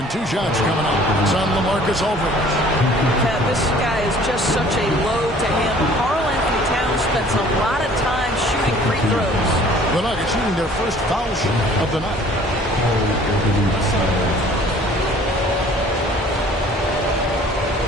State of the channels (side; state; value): both; normal; correlation 0.52